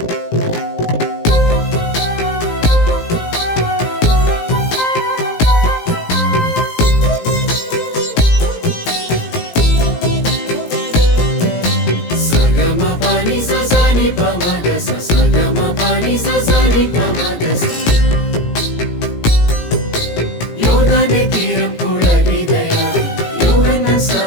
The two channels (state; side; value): late; right; 17 ms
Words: യോർദാന്റെ തീരം പുളകിതയായി യോഹന്നാൻ